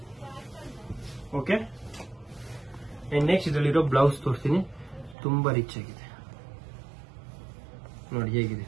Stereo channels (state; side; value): drops out; left; at 5.2 s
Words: ಓಕೆ, ಅಂಡ್ ನೆಕ್ಸ್ಟ್ ಇದರಲ್ಲಿರೋ ಬ್ಲೌಸ್ ತೋರಿಸ್ತೀನಿ. ತುಂಬಾ ರಿಚ್ ಆಗಿದೆ ನೋಡಿ ಹೇಗಿದೆ